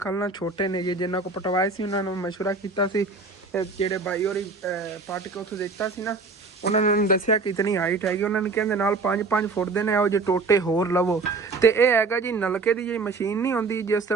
ਨਾ, ਛੋਟੇ ਨੇ ਜਿਨ੍ਹਾਂ ਕੋ ਪਟਵਾਏ ਸੀ ਉਹਨਾਂ ਨੂੰ ਮਸ਼ਵਰਾ ਕੀਤਾ ਸੀ। ਜਿਹੜੇ ਬਾਈ ਹੋਰੀ ਪੱਟ ਕੇ ਉੱਥੋਂ ਦਿੱਤਾ ਸੀ ਨਾ ਉਹਨਾਂ ਨੇ ਮੈਨੂੰ ਦੱਸਿਆ ਕਿ ਇਤਨੀ ਹਾਈਟ ਹੈਗੀ। ਉਹਨਾਂ ਨੇ ਕਹਿੰਦੇ ਨਾਲ 5 ਫੁੱਟ ਦੇ ਨੇ ਇਹੋ ਜਿਹੇ ਟੋਟੇ ਹੋਰ ਲਵੋ। ਤੇ ਇਹ ਹੈਗਾ ਜੀ ਨਲਕੇ ਦੀ ਜਿਹੜੀ ਮਸ਼ੀਨ ਨਹੀਂ ਹੁੰਦੀ, ਜਿਸ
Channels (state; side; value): quieter; left; 4.0 dB